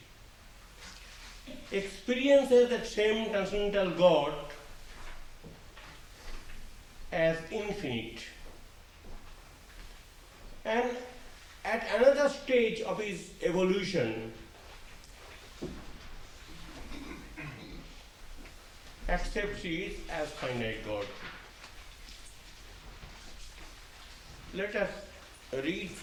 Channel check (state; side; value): identical; both; correlation 1.00